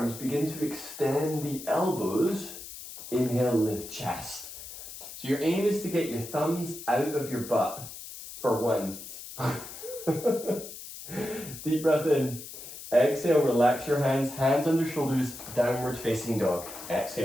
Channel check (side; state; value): left; noise; hiss, 12 dB below the sound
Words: begin to extend the elbows. Inhale, lift chest. So your aim is to get your thumbs out of your butt for once. Deep breath in. Exhale, relax your hands, hands under shoulders, downward facing dog.